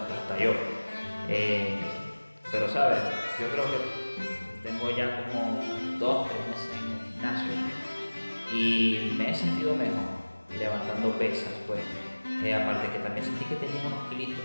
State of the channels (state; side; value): inverted; both; correlation -1.00